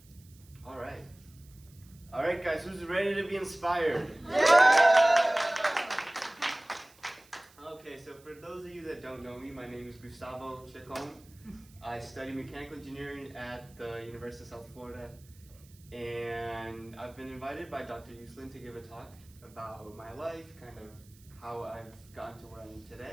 All right. All right, guys, who's ready to be inspired? Okay, so for those of you that don't know me, my name is Gustavo Ceccon. I study mechanical engineering at the University of South Florida, and I've been invited by Dr. Uslin to give a talk about my life, kind of how I've gotten to where I am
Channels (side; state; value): right; noise; hiss, 27 dB below the sound